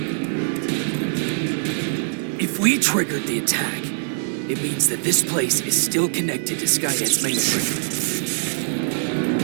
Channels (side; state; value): left; silent; digital silence